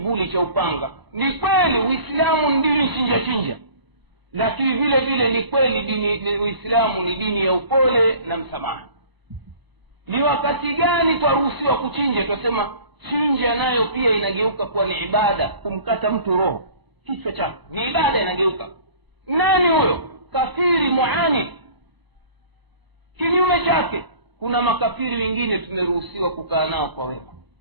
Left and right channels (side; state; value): left; late; 1.0 ms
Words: cha upanga. Ni kweli Uislamu ni dini chinja chinja, lakini vile vile ni kweli dini Uislamu ni dini ya upole na msamaha. Ni wakati gani twaruhusiwa kuchinja? Tunasema chinja nayo pia inageuka kuwa ni ibada. Kumkata mtu roho, kichwa chake, ni ibada, inageuka. Nani huyo? Kafiri muani. Kinyume chake kuna makafiri wengine tumeruhusiwa kukaa nao kwa wema.